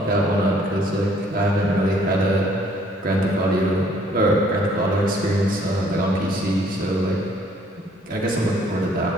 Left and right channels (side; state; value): both; normal; correlation 0.62